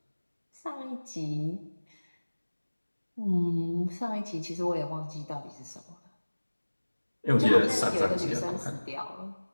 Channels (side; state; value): both; inverted; correlation -1.00